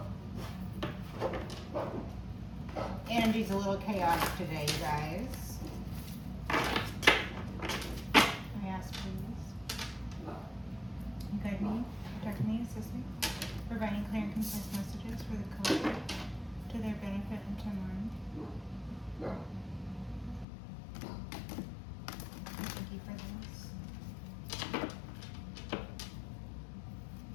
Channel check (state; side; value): drops out; right; at 20.5 s